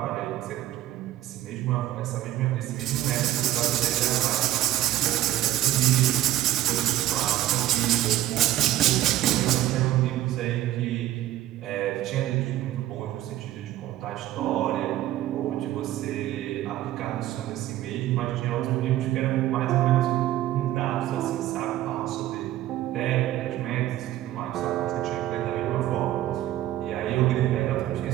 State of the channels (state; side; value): quieter; left; 14.0 dB